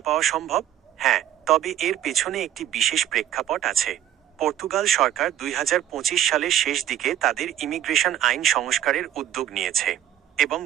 পাওয়া সম্ভব? হ্যাঁ, তবে এর পেছনে একটি বিশেষ প্রেক্ষাপট আছে। পর্তুগাল সরকার 2025 সালের শেষ দিকে তাদের ইমিগ্রেশন আইন সংস্কারের উদ্যোগ নিয়েছে এবং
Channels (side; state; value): left; quieter; 11.2 dB